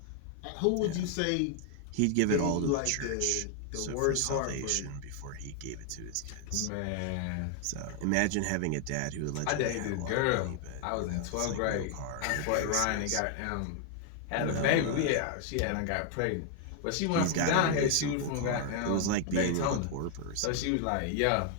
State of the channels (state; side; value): different; both; correlation 0.00